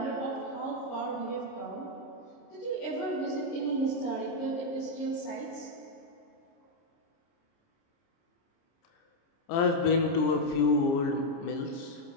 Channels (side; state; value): right; late; 30 ms